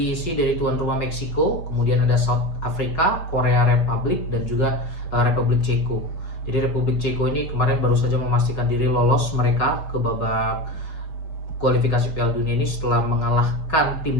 dari tuan rumah Meksiko, kemudian ada South Africa, Korea Republic, dan juga Republik Ceko. Jadi Republik Ceko ini kemarin baru saja memastikan diri lolos mereka ke babak kualifikasi Piala Dunia ini setelah mengalahkan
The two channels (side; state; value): right; late; 5.6 ms